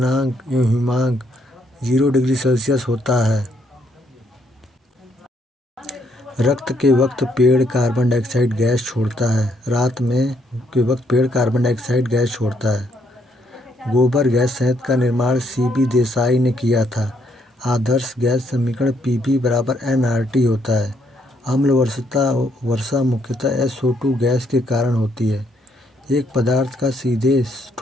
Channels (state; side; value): normal; both; correlation 0.72